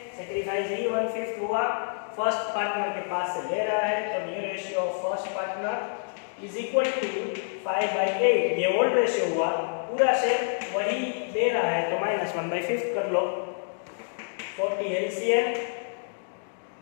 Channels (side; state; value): right; silent; digital silence